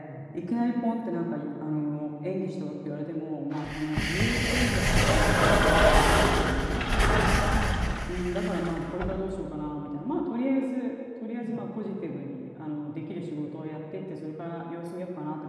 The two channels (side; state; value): both; identical; correlation 1.00